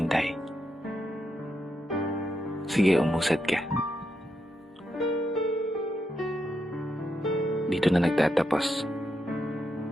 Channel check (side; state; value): both; normal; correlation 0.83